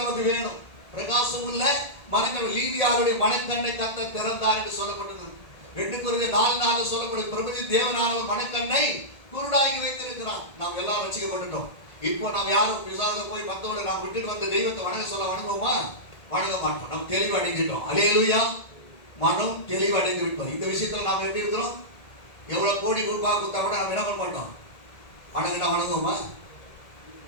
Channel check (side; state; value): right; late; 1.8 ms